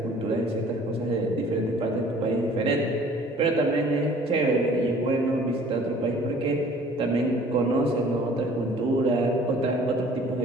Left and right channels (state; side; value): normal; both; correlation 0.52